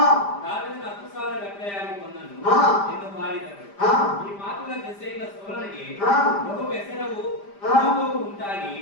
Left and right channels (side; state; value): right; late; 5.0 ms